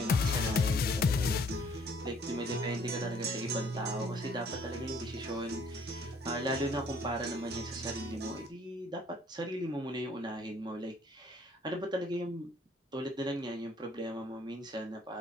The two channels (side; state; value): both; normal; correlation 0.60